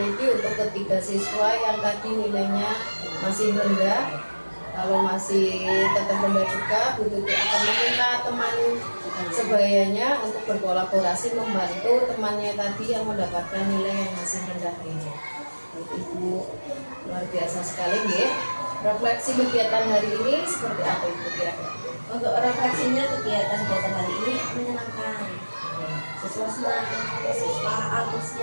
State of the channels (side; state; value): both; inverted; correlation -1.00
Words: untuk ketiga siswa yang tadi nilainya masih rendah. Kalau masih tetap rendah juga, Bu Tuti akan meminta teman sebayanya untuk berkolaborasi membantu temannya tadi yang mendapatkan nilai yang masih rendah ini. Ibu, luar biasa sekali ya. Refleksi kegiatan hari ini seperti apa Ibu kira-kira? Untuk refleksinya, kegiatan hari ini menyenangkan. Siswa senang, siswa